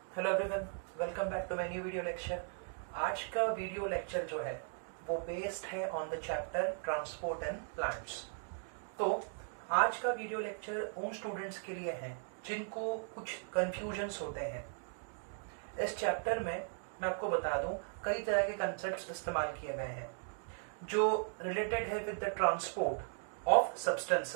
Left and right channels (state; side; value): silent; left; 53 dB below the other